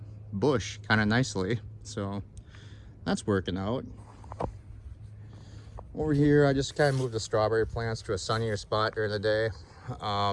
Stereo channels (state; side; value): identical; both; correlation 1.00